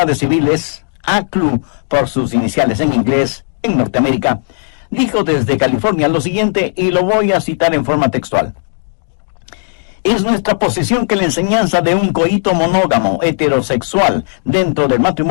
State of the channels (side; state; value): right; silent; digital silence